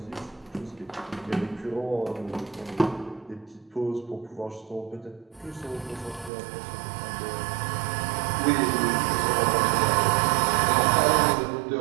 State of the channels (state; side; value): drops out; left; at 6.3 s